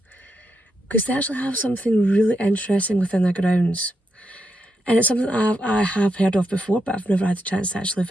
because they actually have something really interesting within their grounds. And it's something that I have heard of before, but I've never had the chance to actually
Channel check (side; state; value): both; normal; correlation 0.83